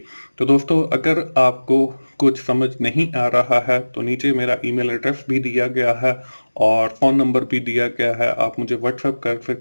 तो दोस्तों अगर आपको कुछ समझ नहीं आ रहा है तो नीचे मेरा ईमेल एड्रेस भी दिया गया है और फ़ोन नंबर भी दिया गया है, आप मुझे व्हाट्सएप कर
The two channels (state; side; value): inverted; both; correlation -1.00